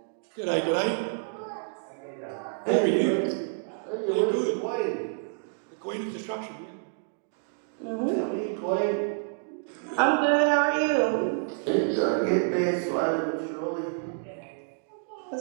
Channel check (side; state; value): left; silent; digital silence